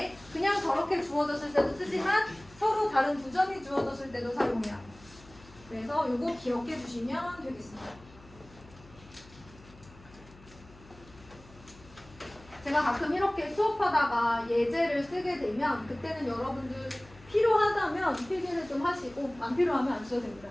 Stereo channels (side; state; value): left; noise; hum, 23 dB below the sound